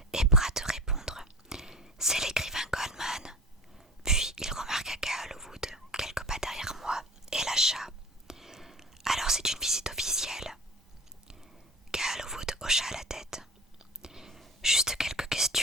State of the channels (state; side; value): normal; both; correlation 0.36